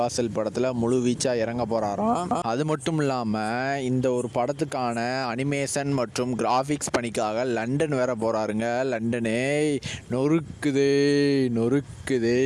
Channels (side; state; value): both; identical; correlation 1.00